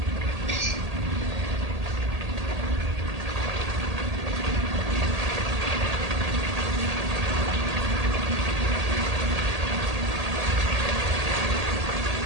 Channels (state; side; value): late; left; 1.8 ms